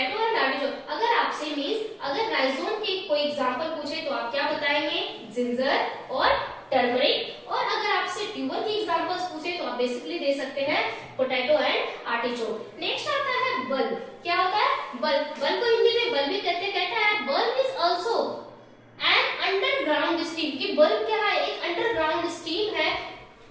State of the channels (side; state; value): both; identical; correlation 1.00